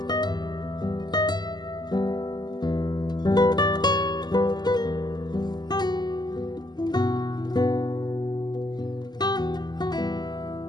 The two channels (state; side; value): late; right; 0.20 ms